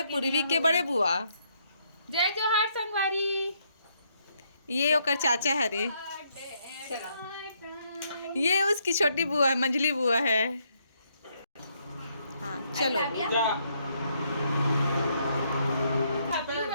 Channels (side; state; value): both; inverted; correlation -0.73